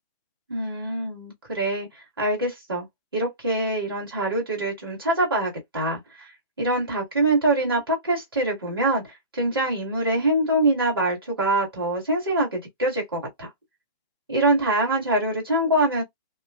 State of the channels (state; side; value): inverted; both; correlation -0.31